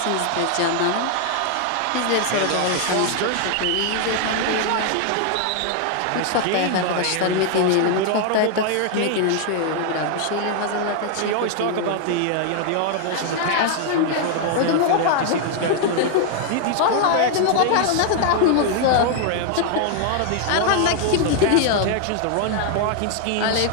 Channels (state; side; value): different; both; correlation 0.00